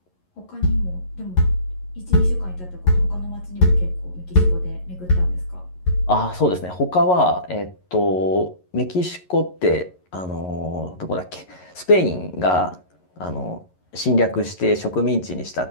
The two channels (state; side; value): late; right; 11 ms